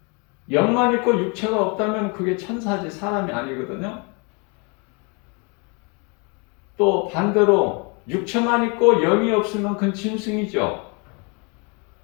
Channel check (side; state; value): right; quieter; 32.5 dB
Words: 영만 있고 육체가 없다면 그게 천사지 사람이 아니거든요. 또 반대로 육체만 있고 영이 없으면 그건 짐승이죠.